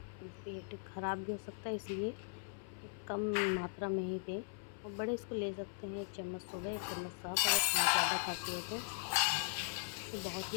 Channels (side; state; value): right; silent; 52 dB below the other